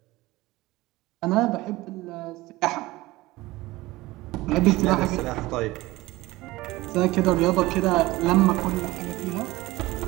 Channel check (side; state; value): left; quieter; 19.4 dB